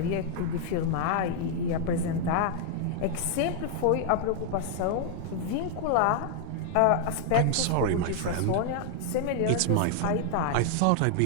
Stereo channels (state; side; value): different; both; correlation 0.00